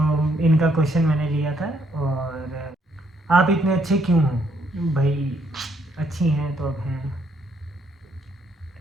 इनका क्वेश्चन मैंने लिया था। और आप इतने अच्छे क्यों हो? भाई अच्छी हैं तो अब हैं।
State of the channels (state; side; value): normal; both; correlation 0.71